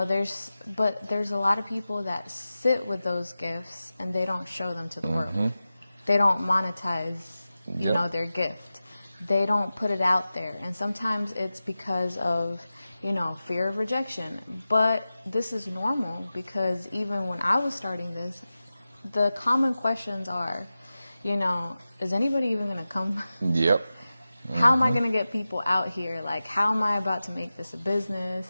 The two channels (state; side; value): inverted; both; correlation -0.95